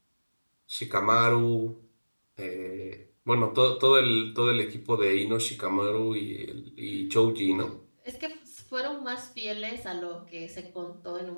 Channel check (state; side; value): inverted; both; correlation -1.00